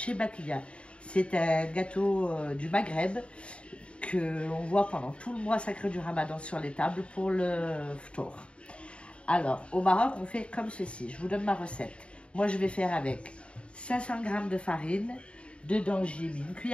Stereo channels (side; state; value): right; late; 0.058 ms